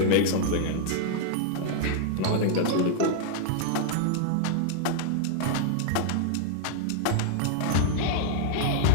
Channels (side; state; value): both; different; correlation -0.01